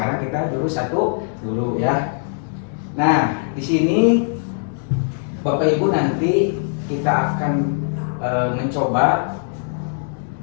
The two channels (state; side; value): silent; right; digital silence